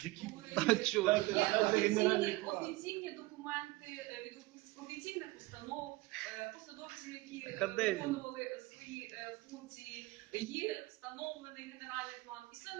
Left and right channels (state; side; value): quieter; left; 21.2 dB